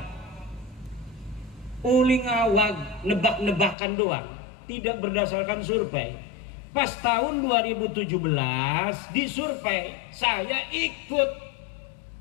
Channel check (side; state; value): right; drops out; at 3.8 s